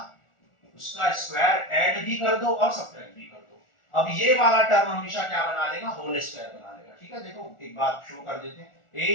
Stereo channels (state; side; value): late; right; 1.4 ms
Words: स्क्वायर ऐड भी कर दो और सब्ट्रैक्ट भी कर दो। अब ये वाला टर्म हमेशा क्या बना लेगा? होल स्क्वायर बना लेगा, ठीक है। देखो एक बात शो कर देते हैं,